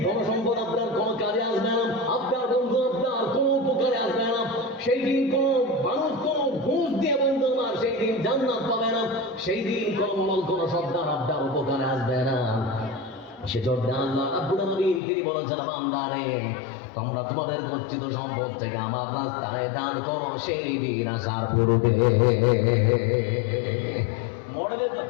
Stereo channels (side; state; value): right; drops out; at 15.0 s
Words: ধন সম্পদ আপনার কোনো কাজে আসবে না, আপনার বন্ধু আপনার কোনো উপকারে আসবে না। সেই দিন কোনো মানুষ কোনো ঘুষ দিয়ে বন্ধু আমার সেই দিন জান্নাত পাবে না। সেই দিন কোনো শব্দার আপনার উপকারে আসবে না। সেজন্য আল্লাহ রাব্বুল আলামিন তিনি বলেছেন বান্দারে তোমরা তোমাদের গচ্ছিত সম্পদ থেকে আমার রাস্তায় দান করো সেই দিন আসার পূর্বে। মরে তো